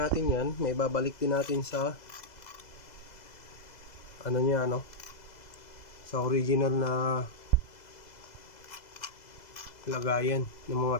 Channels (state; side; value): late; right; 2.0 ms